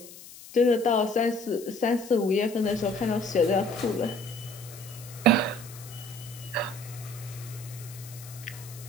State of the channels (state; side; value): noise; left; hiss, 17 dB below the sound